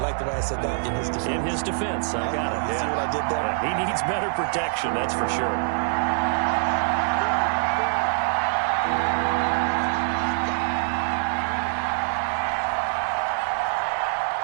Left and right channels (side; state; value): left; silent; digital silence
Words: like the way I said that? In his defense. In his defense, I got it. See what I did there? Yeah, he needs better protection, that's for sure.